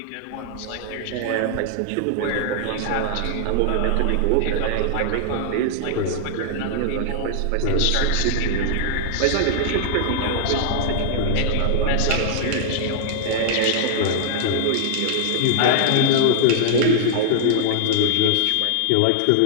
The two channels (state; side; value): different; both; correlation -0.01